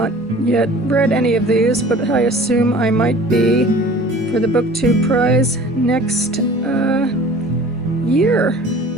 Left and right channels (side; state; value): both; normal; correlation 0.46